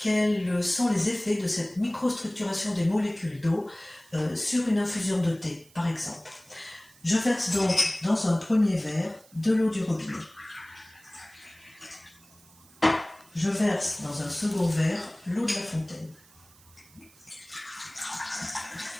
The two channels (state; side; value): noise; right; hiss, 26 dB below the sound